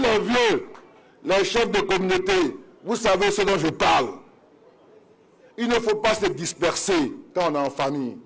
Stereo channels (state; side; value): identical; both; correlation 1.00